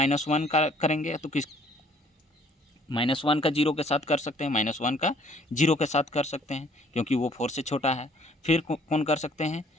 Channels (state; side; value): normal; both; correlation 0.60